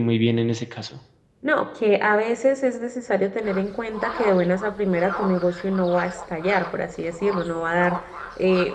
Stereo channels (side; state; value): both; identical; correlation 1.00